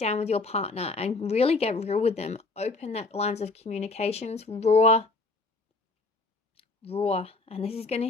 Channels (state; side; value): quieter; right; 3.4 dB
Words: with your partner and really get real with them. Open that lines of communications, raw, and this is going to